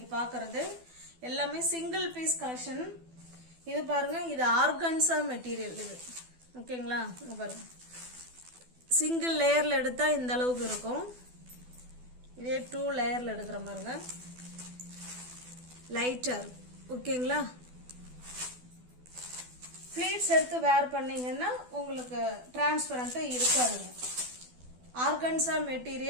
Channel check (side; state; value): left; late; 12 ms